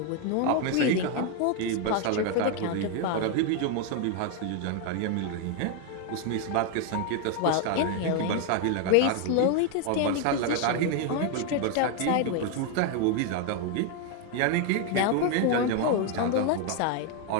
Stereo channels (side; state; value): both; different; correlation 0.01